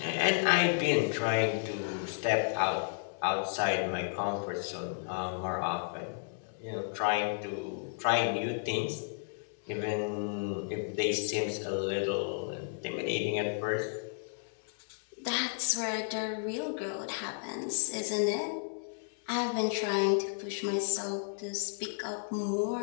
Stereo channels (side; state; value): right; silent; 56 dB below the other